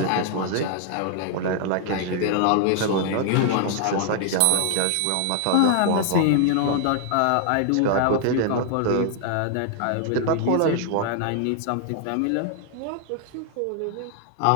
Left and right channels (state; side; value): different; both; correlation 0.00